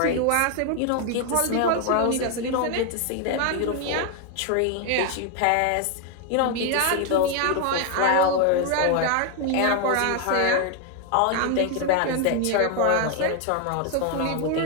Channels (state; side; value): different; both; correlation 0.01